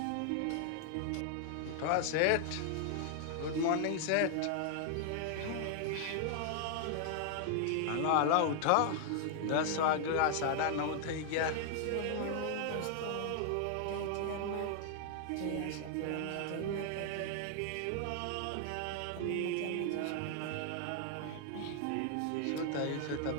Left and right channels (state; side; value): different; both; correlation 0.00